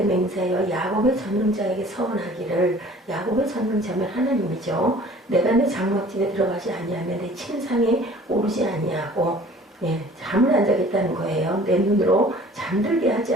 맹세하여 야곱의 전능자에게 서원하기를, 야곱의 전능자면 하나님이죠. 내가 내 장막집에 들어가지 아니하며 내 침상에 오르지 아니하고 잠을 안 자겠다는 거예요. 내 눈으로 잠들게 하지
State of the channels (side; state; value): both; normal; correlation 0.49